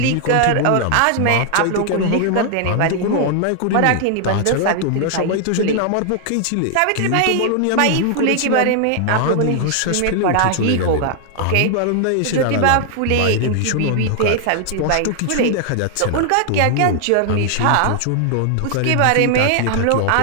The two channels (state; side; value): different; both; correlation 0.00